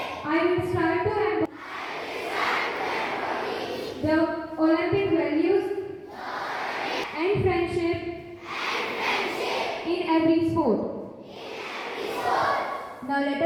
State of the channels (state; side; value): identical; both; correlation 1.00